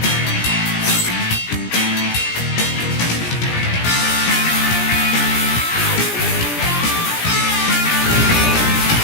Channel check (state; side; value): late; right; 17 ms